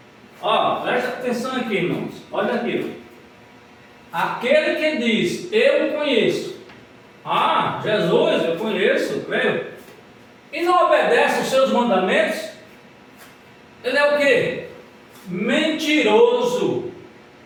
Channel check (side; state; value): both; identical; correlation 1.00